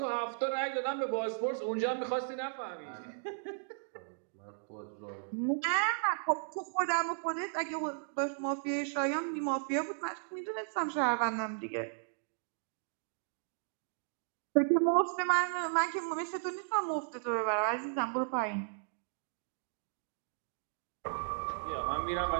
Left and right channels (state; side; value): silent; left; digital silence